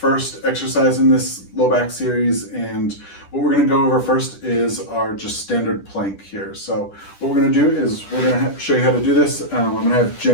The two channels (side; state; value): right; late; 10 ms